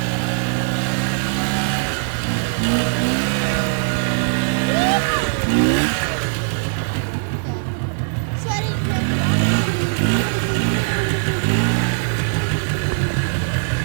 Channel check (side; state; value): left; silent; digital silence